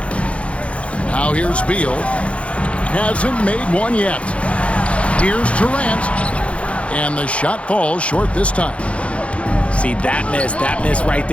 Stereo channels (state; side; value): late; right; 0.062 ms